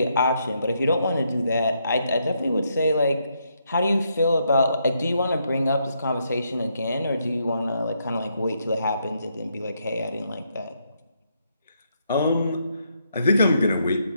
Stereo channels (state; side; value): inverted; both; correlation -0.77